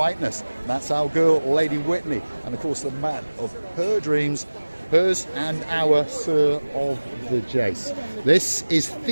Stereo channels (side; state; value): both; inverted; correlation -1.00